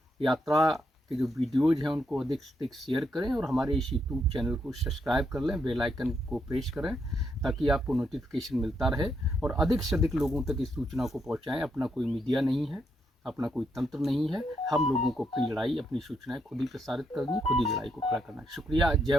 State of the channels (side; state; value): both; normal; correlation 0.78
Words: यात्रा के जो वीडियोज़ हैं उनको अधिक से अधिक शेयर करें, और हमारे इस यूट्यूब चैनल को सब्सक्राइब कर लें, बेल आइकन को प्रेस करें ताकि आपको नोटिफिकेशन मिलता रहे, और अधिक से अधिक लोगों तक इस सूचना को पहुंचाएं। अपना कोई मीडिया नहीं है, अपना कोई तंत्र नहीं है, हम लोगों को अपनी लड़ाई, अपनी सूचनाएं खुद ही प्रसारित करनी, खुद ही लड़ाई को खड़ा करना है। शुक्रिया।